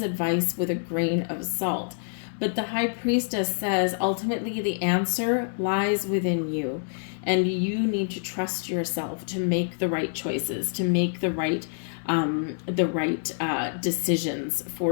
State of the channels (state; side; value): silent; right; digital silence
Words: advice with a grain of salt. But the High Priestess says, ultimately, the answer lies within you. And you need to trust yourself to make the right choices, to make the right decisions